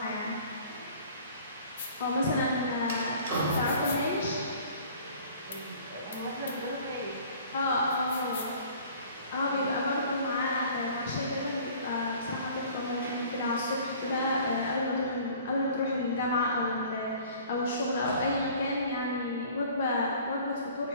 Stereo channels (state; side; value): inverted; both; correlation -0.49